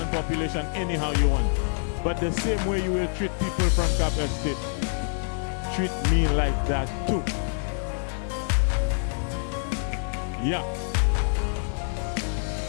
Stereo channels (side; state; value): right; silent; digital silence